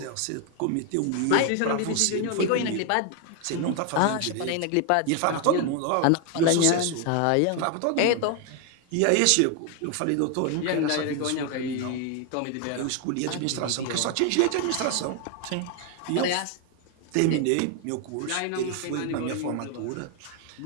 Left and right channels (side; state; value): both; different; correlation 0.01